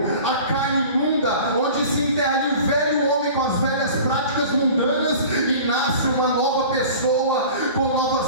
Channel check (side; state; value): both; inverted; correlation -0.41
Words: a carne imunda, onde se enterra ali o velho homem com as velhas práticas mundanas e nasce uma nova pessoa com